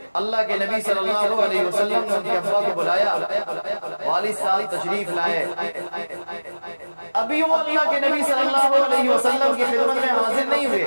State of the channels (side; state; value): both; inverted; correlation -1.00